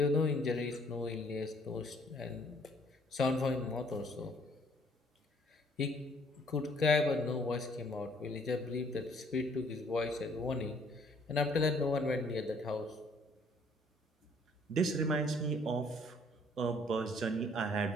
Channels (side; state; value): both; normal; correlation 0.62